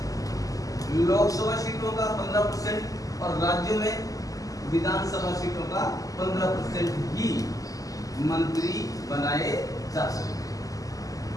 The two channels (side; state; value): right; late; 0.17 ms